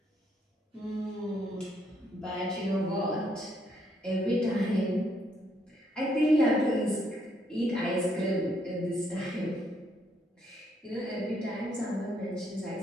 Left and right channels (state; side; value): normal; both; correlation 0.72